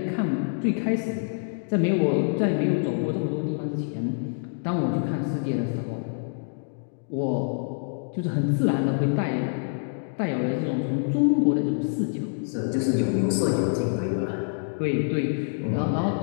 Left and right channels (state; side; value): silent; right; digital silence